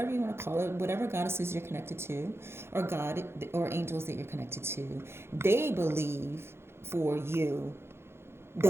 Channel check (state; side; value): late; left; 0.12 ms